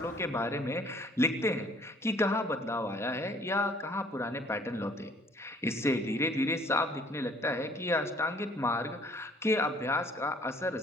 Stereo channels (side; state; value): both; normal; correlation 0.57